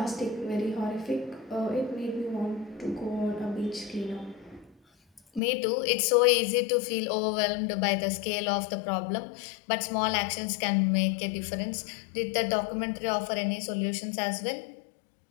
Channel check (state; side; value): drops out; right; at 5.4 s